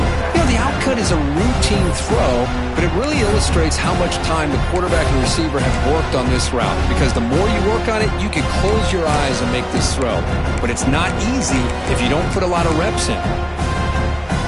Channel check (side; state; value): both; identical; correlation 1.00